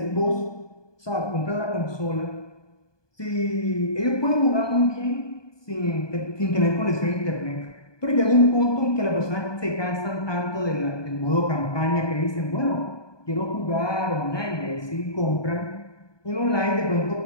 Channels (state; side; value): late; right; 1.2 ms